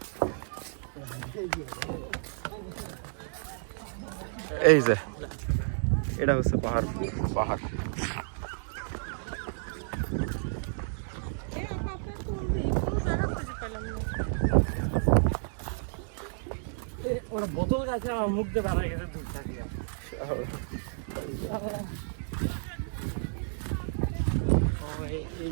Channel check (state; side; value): silent; left; digital silence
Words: এই যে এটা হচ্ছে পাহাড়পুর পাহাড়। ওরা বোতল গাছে আমার মুখ দিয়ে বেড়া গেছে দূর থাকিয়া।